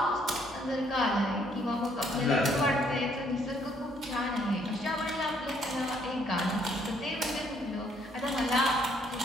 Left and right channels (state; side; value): normal; both; correlation 0.67